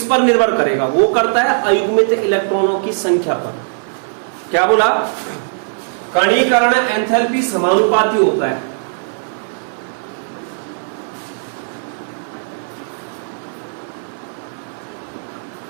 पर निर्भर करेगा? वो करता है अयुग्मित इलेक्ट्रॉनों की संख्या पर। क्या बोला? कणीकरण एंथैल्पी समानुपाती होता है।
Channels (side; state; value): left; silent; 57 dB below the other